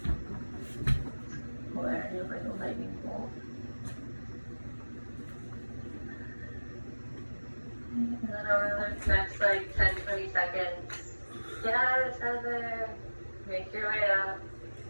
Where you're like a lightning bolt. And then over the next 10-20 seconds, get out of the tether, make your way up.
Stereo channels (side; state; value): both; inverted; correlation -1.00